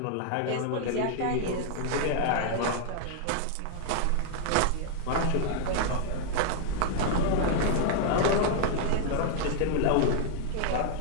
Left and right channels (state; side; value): different; both; correlation 0.00